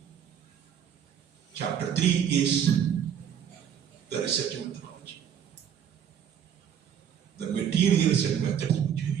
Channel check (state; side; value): quieter; left; 8.7 dB